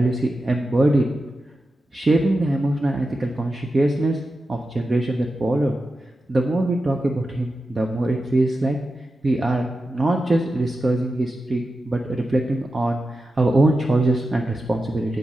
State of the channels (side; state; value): both; normal; correlation 0.91